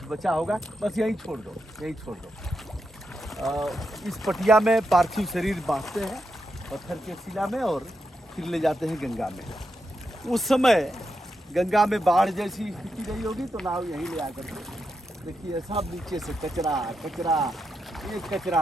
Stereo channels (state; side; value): normal; both; correlation 0.85